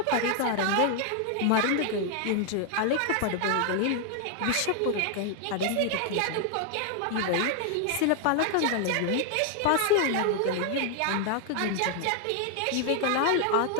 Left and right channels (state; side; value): different; both; correlation 0.00